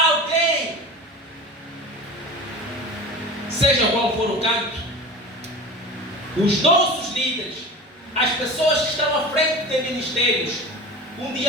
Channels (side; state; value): both; normal; correlation 0.33